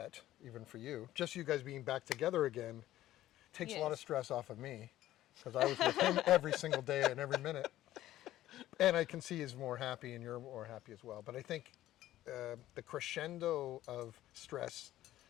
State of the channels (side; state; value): right; quieter; 14.2 dB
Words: even for you, just you guys being back together again takes a lot of Yes. stress off of me because I was with him every single day and every minute. And I can see he's more happy and you're more happy as well. But I think the crescendo of stress